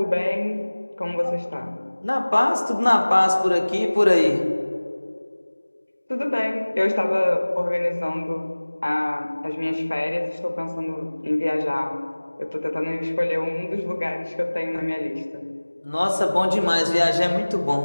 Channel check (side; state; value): both; inverted; correlation -1.00